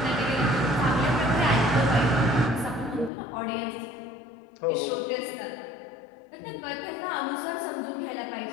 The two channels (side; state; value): right; drops out; at 3.1 s